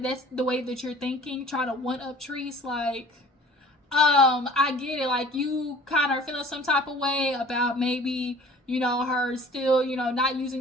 that's the way that you're thinking, trying to one-up Treese, like, I get it. Like, you kind of are feeling some type of way about maybe, her still, not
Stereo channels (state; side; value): normal; both; correlation 0.48